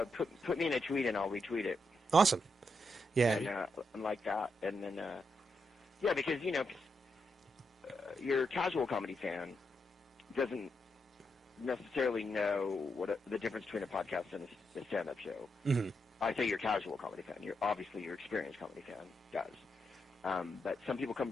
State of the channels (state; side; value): normal; both; correlation 0.82